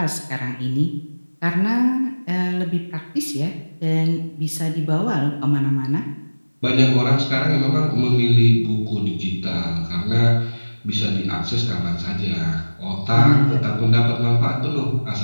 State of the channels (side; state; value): both; inverted; correlation -1.00